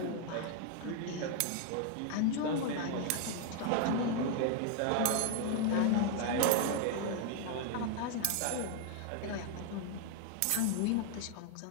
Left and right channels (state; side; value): different; both; correlation 0.00